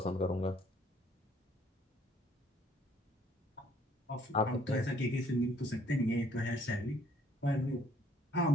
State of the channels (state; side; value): normal; both; correlation 0.63